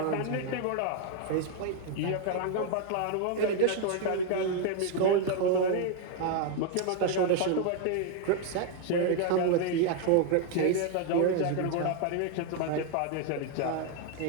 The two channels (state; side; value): different; both; correlation 0.00